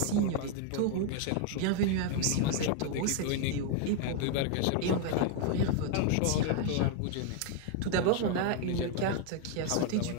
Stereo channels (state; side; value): different; both; correlation 0.00